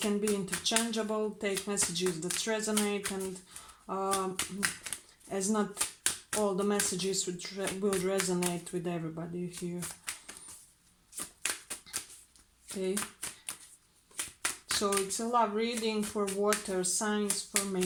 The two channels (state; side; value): identical; both; correlation 1.00